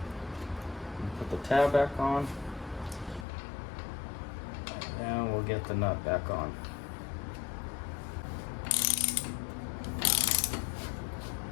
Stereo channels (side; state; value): right; drops out; at 3.2 s